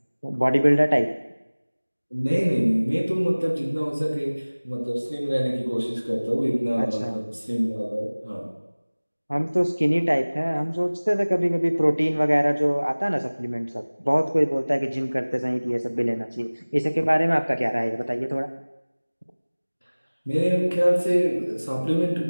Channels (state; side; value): inverted; both; correlation -1.00